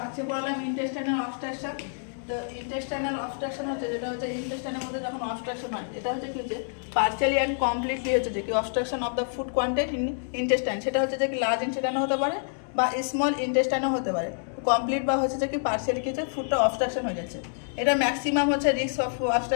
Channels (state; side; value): silent; right; digital silence